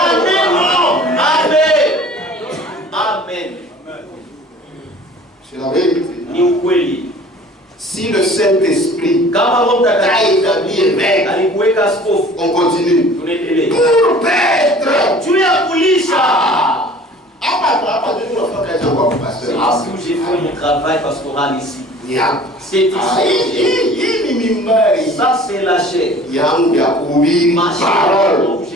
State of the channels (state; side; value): normal; both; correlation 0.47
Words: Amen. Amen. C'est la vérité. Si le Saint-Esprit a établi évêque, on continue. Pour Petre. Tu es à Poulisha. C'est où j'ai fait mon travail pastoral ici. C'est ici. Ça, c'est la chair. Ma chair, je